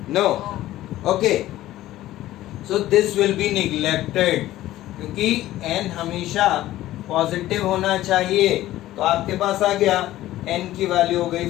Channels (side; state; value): right; quieter; 15.0 dB